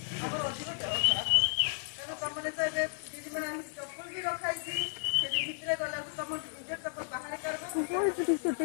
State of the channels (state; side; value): silent; right; 56 dB below the other